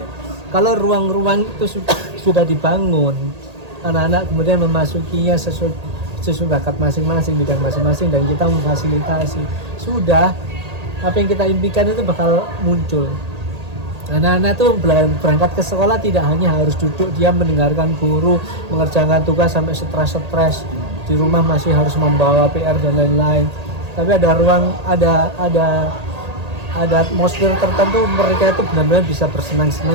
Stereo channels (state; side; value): late; left; 1.8 ms